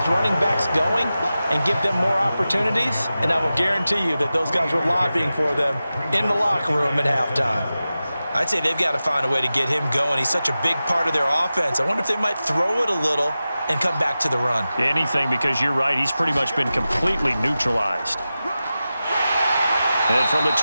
running backs going and give them more opportunities, and I will guarantee you that those guys were lobbying for them in the locker room at halftime. I'd say they've got to find a way to get him going. He's such a big part of their offense. I wonder if they might throw it a little and come back to the run. Anything, because you're right, he's pretty much been completely neutralized. And from the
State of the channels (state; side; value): inverted; both; correlation -0.94